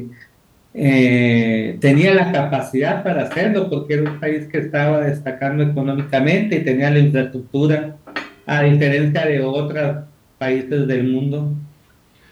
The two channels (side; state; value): both; identical; correlation 1.00